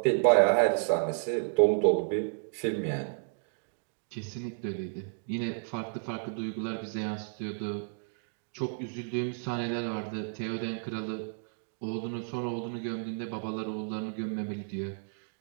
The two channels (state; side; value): silent; left; digital silence